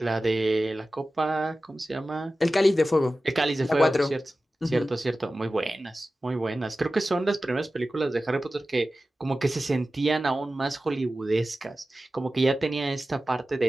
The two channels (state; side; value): normal; both; correlation 0.95